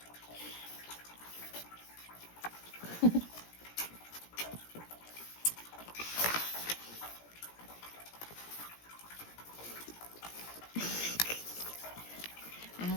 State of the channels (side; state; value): right; late; 17 ms